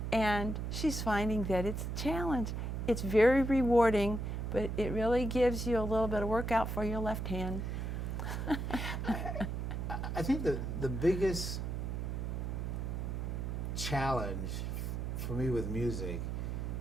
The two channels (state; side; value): noise; right; hum, 3 dB below the sound